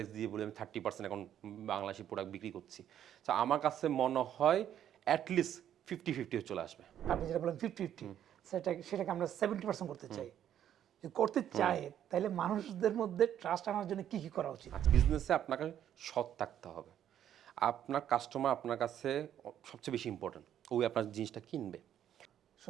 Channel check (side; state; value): left; quieter; 10.4 dB